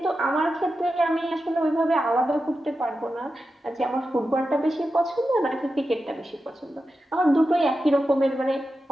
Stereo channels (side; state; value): both; normal; correlation 0.91